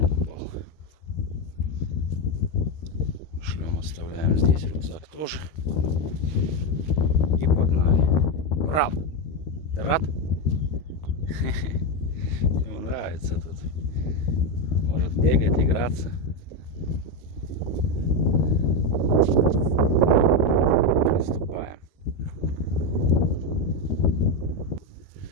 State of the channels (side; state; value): right; late; 13 ms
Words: Шлем оставляем здесь, рюкзак тоже. И погнали. Ура! Ты рад? Ему нравится тут. Может бегать, играться. Приступаем.